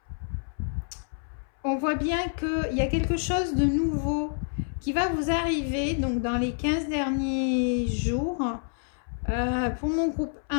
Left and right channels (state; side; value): silent; right; 59 dB below the other